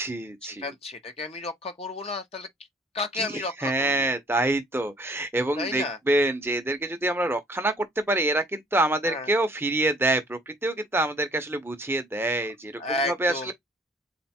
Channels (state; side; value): normal; both; correlation 0.56